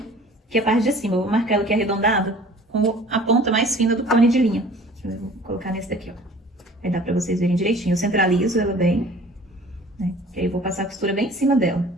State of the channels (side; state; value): both; normal; correlation 0.48